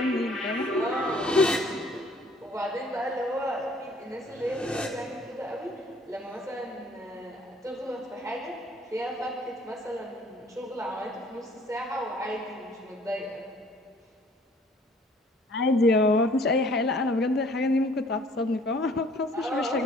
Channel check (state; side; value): normal; both; correlation 0.57